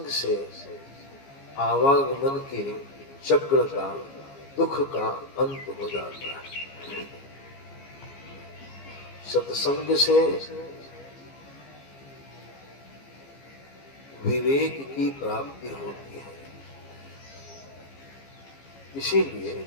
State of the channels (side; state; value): right; late; 15 ms